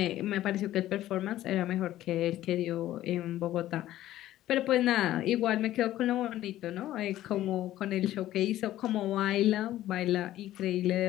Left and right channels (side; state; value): right; quieter; 14.0 dB